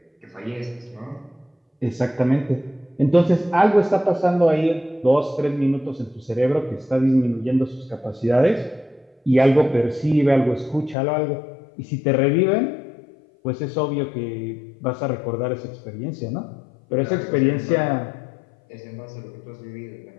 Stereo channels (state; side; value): drops out; right; at 11.0 s